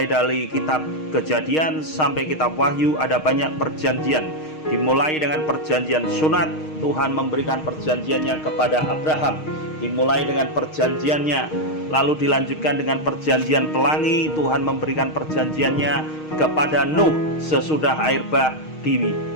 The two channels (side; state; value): right; late; 6.4 ms